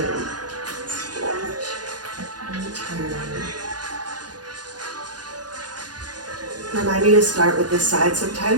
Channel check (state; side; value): late; left; 0.69 ms